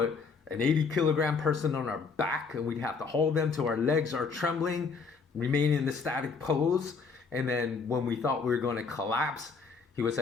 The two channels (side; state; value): right; quieter; 5.0 dB